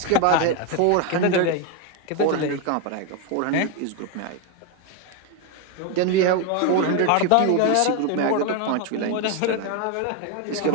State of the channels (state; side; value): different; both; correlation 0.01